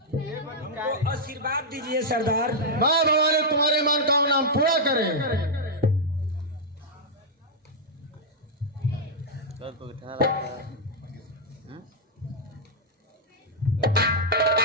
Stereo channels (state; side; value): normal; both; correlation -0.05